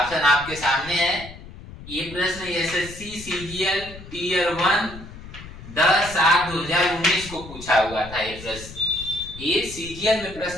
आपके सामने है। ये प्रश्न एसएससी सीजीएल टीयर 1 10/7/2019 को पूछा हुआ था। ये प्रश्न ये सीजीएल में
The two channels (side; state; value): left; noise; rumble, 15 dB below the sound